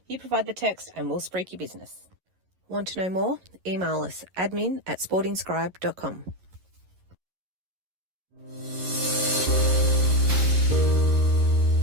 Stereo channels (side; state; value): left; late; 11 ms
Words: You provide the text and we'll spruik your business. Want to know more? Email us admin@sportingscribe.com.